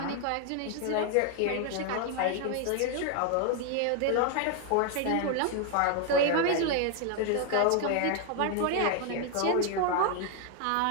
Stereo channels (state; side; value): different; both; correlation 0.01